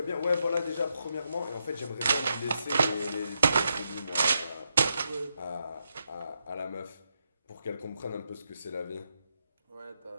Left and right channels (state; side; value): inverted; both; correlation -0.82